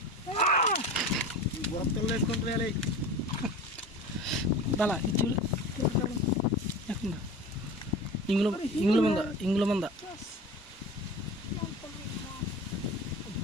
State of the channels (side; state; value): both; normal; correlation 0.34